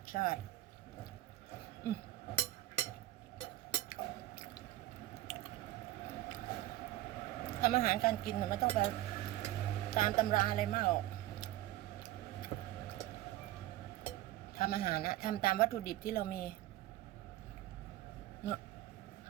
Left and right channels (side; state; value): left; quieter; 15.3 dB